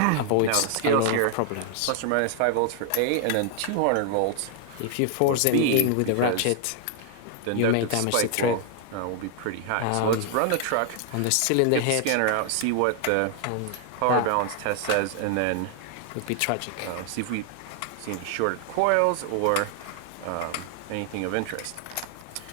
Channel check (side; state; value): both; different; correlation 0.00